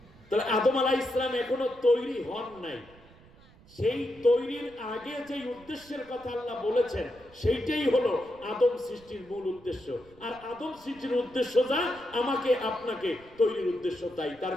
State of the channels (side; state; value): right; noise; rumble, 25 dB below the sound